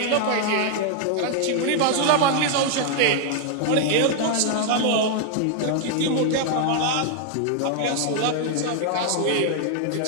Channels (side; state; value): both; different; correlation 0.00